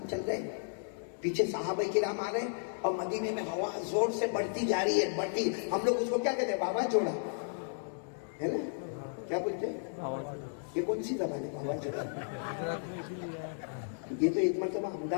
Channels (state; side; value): silent; right; digital silence